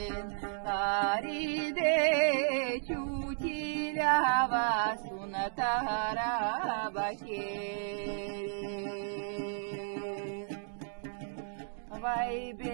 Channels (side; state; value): left; silent; digital silence